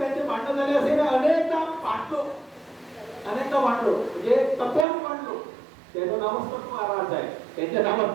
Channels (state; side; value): drops out; left; at 4.9 s